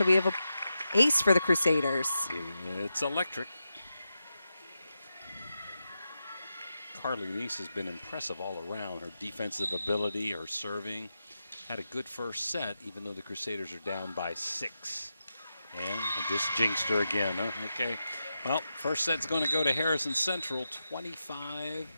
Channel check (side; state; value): both; inverted; correlation -0.89